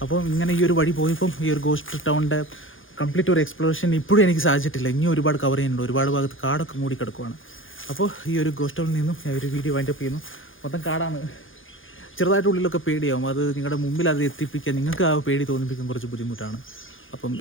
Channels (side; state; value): right; late; 0.58 ms